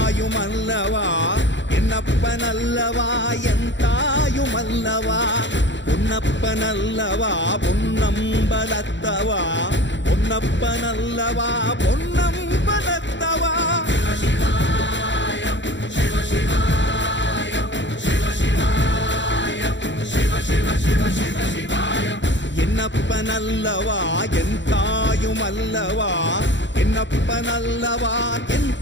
என்னப்பனல்லவா என் தாயுமல்லவா, பொன்னப்பனல்லவா பொன்னம்பலத்தவா, பொன்னப்பனல்லவா பொன்னம்பலத்தவா. என்னப்பனல்லவா என் தாயுமல்லவா, என்னப்பனல்லவா என்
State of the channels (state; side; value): late; right; 0.53 ms